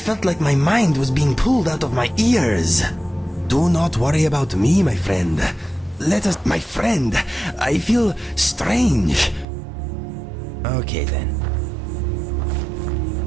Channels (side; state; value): left; drops out; at 9.5 s